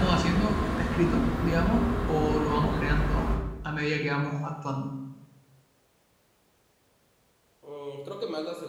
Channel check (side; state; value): both; identical; correlation 1.00